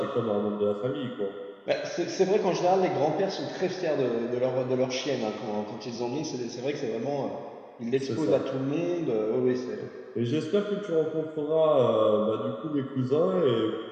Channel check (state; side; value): identical; both; correlation 1.00